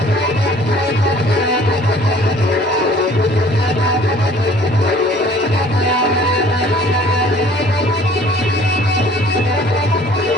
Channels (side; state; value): both; normal; correlation 0.53